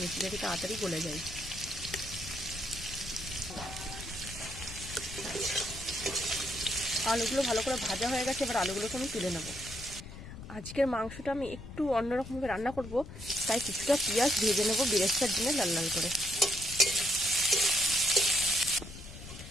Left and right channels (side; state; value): left; noise; rumble, 13 dB below the sound